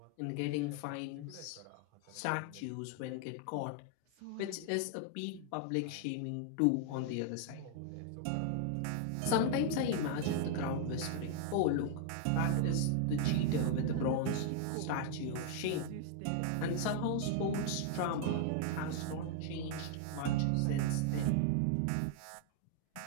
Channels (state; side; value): different; both; correlation 0.00